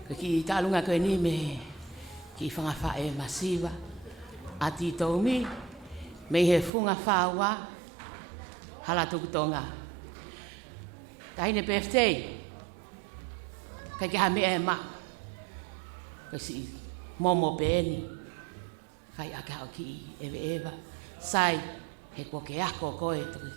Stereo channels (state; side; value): drops out; left; at 6.7 s